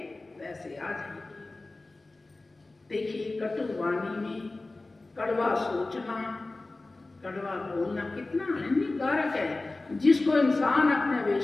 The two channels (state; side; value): quieter; right; 3.2 dB